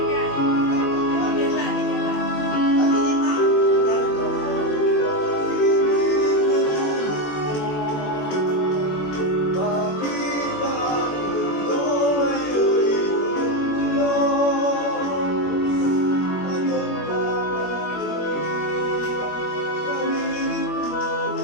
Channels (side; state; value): right; late; 21 ms